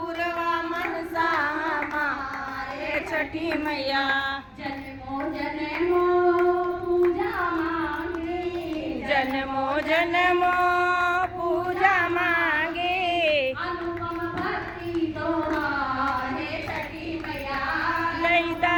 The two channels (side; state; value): both; identical; correlation 1.00